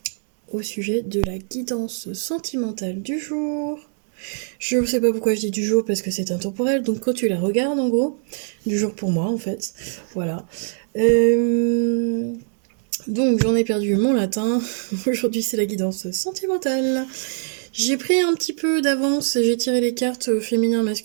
au sujet de la guidance sentimentale du jour. Je ne sais pas pourquoi je dis du jour parce que c'est intemporel, donc quand tu la regardes en gros, du jour pour moi en fait, voilà. Donc j'en ai perdu mon latin, aujourd'hui c'est la guidance sentimentale. J'ai pris un petit peu d'avance, j'ai tiré les cartes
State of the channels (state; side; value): silent; left; 64 dB below the other